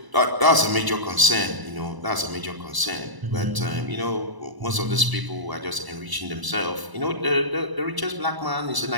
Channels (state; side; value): late; left; 1.0 ms